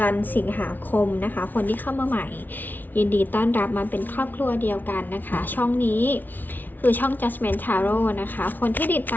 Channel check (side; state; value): right; late; 0.084 ms